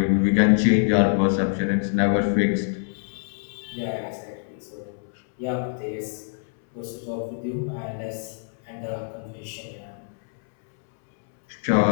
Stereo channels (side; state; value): right; silent; 62 dB below the other